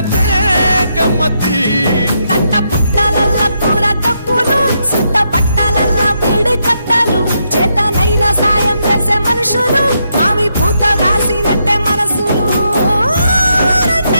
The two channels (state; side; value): inverted; both; correlation -0.80